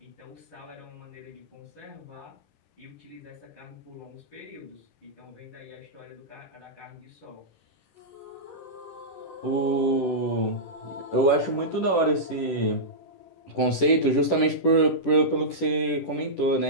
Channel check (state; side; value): late; right; 10 ms